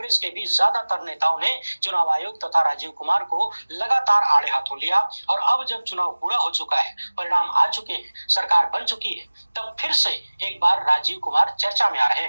के भी ज्यादातर नेताओं ने चुनाव आयोग तथा राजीव कुमार को लगातार आड़े हाथों लिया। और अब जब चुनाव पूरा हो चुका है, परिणाम आ चुके हैं, सरकार बन चुकी है, तब फिर से एक बार राजीव कुमार चर्चा में आ रहे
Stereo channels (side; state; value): both; inverted; correlation -1.00